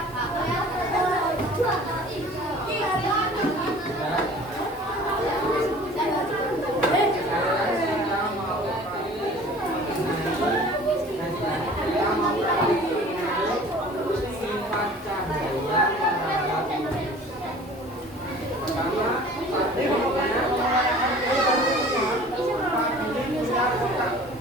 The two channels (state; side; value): normal; both; correlation 0.46